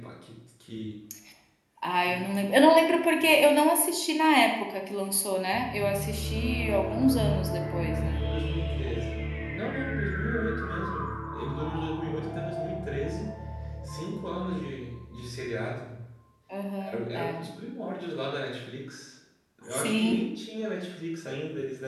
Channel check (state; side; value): identical; both; correlation 1.00